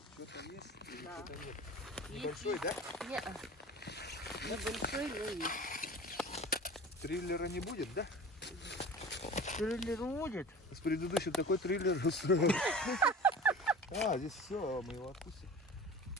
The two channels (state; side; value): normal; both; correlation 0.38